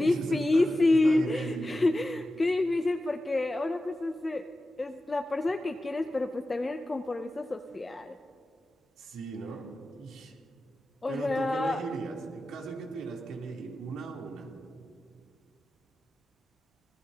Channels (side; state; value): both; normal; correlation 0.93